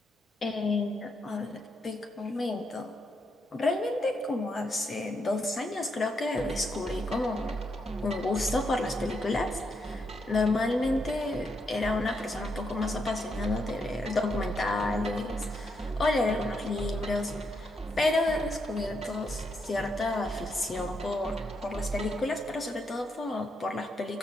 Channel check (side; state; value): both; normal; correlation 0.79